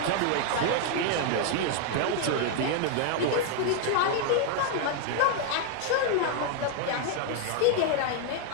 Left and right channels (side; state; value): both; different; correlation 0.00